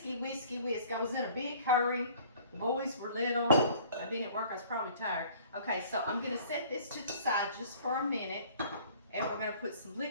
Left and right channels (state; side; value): inverted; both; correlation -0.51